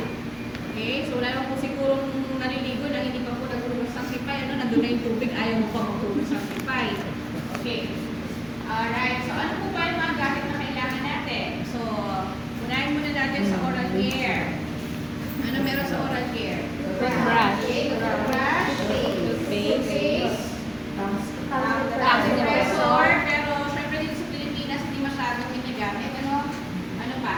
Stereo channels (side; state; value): right; noise; rumble, 27 dB below the sound